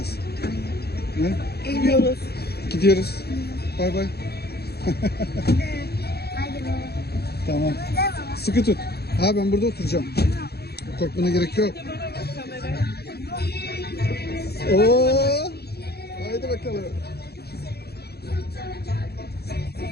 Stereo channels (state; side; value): late; right; 0.47 ms